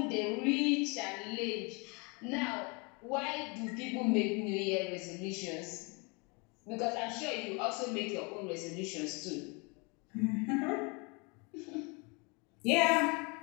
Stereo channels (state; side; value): quieter; right; 30.8 dB